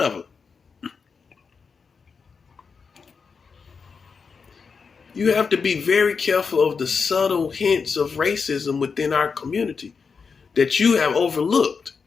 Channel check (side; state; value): right; quieter; 5.4 dB